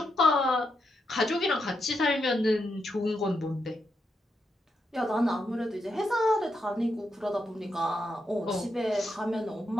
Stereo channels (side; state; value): both; normal; correlation 0.83